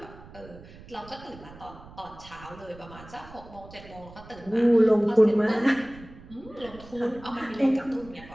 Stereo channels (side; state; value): right; noise; rumble, 19 dB below the sound